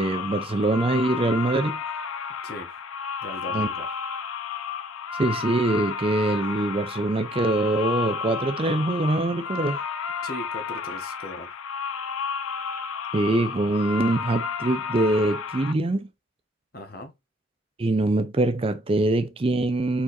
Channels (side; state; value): both; normal; correlation 0.62